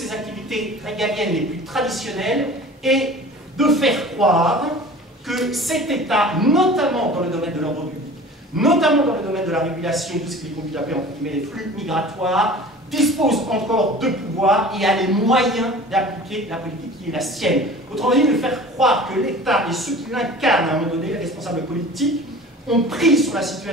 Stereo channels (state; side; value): normal; both; correlation 0.42